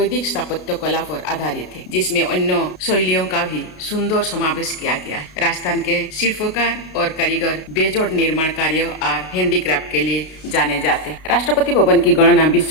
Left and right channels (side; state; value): right; late; 32 ms